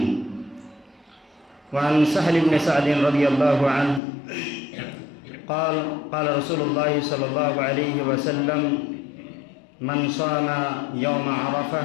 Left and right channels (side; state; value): right; drops out; at 4.0 s